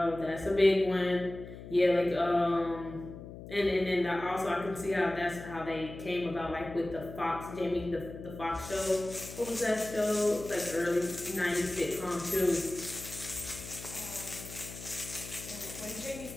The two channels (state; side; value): noise; left; hum, 13 dB below the sound